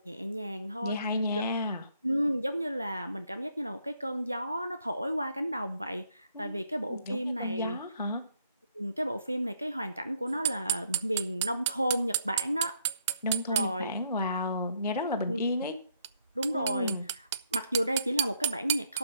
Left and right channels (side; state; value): both; inverted; correlation -0.69